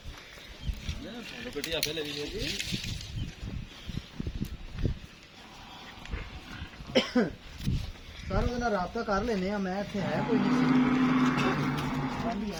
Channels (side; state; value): both; identical; correlation 1.00